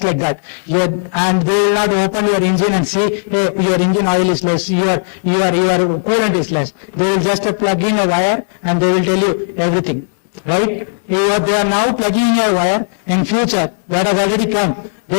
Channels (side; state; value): right; silent; digital silence